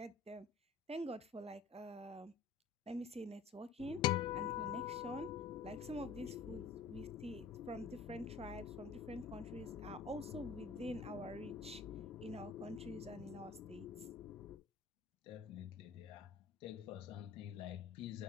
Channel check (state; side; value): quieter; right; 5.1 dB